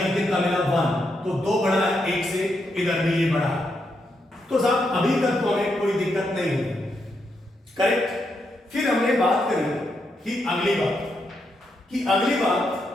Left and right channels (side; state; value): both; normal; correlation 0.81